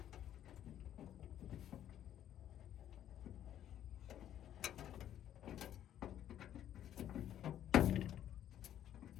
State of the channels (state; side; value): quieter; right; 11.0 dB